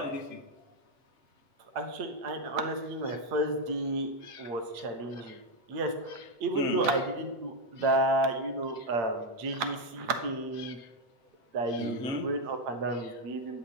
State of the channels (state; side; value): late; left; 8.7 ms